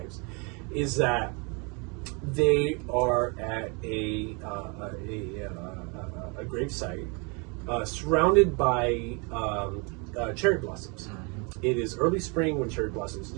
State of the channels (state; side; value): quieter; left; 32.2 dB